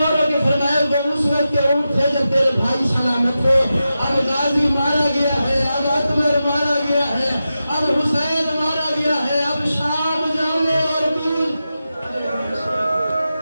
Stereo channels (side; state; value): both; inverted; correlation -0.91